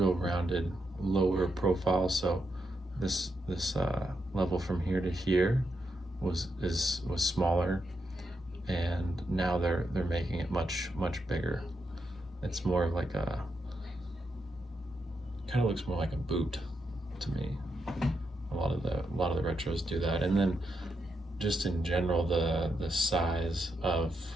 rounded, lower profile. So this level from here to here was smaller, and now they're making it much bigger. It's more of like kind of looks more like a boot to me. A lot of the retros do that. And then just in general, the size of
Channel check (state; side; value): normal; both; correlation 0.83